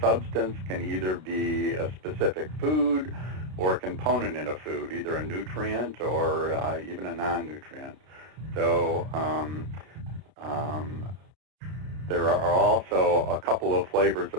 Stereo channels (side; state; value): left; late; 32 ms